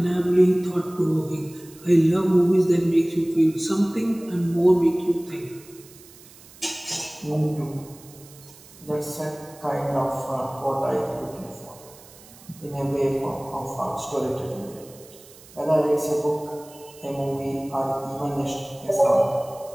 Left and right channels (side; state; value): right; noise; hiss, 22 dB below the sound